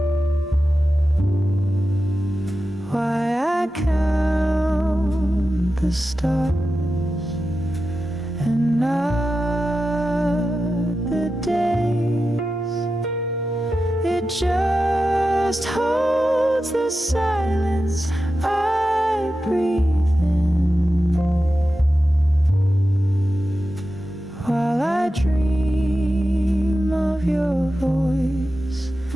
why I count the stars and not the days. It just holds the silence I breathe in, while I dream of your voice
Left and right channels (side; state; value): both; normal; correlation 0.92